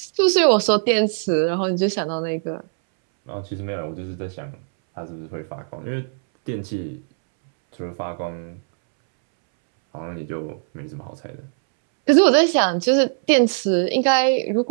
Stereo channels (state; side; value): silent; left; 65 dB below the other